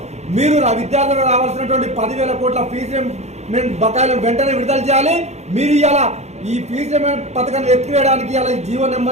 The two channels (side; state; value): left; late; 0.32 ms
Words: మీరు విద్యార్థులకు రావాల్సినటువంటి 10,000 కోట్ల ఫీజు రీయింబర్స్మెంట్ బకాయిలను వెంటనే విడుదల చేయాలి. మీరు ఇలా ఈ ఫీజు రీయింబర్స్మెంట్ పథకాన్ని ఎత్తివేయడానికి ఇలా జీవో